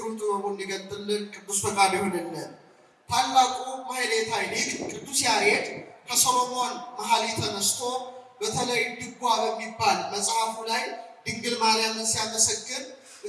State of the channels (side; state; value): both; identical; correlation 1.00